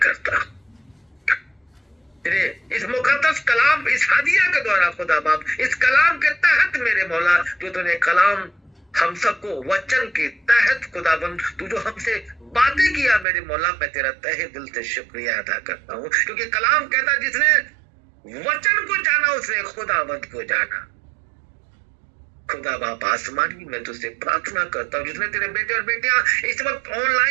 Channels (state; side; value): drops out; left; at 13.2 s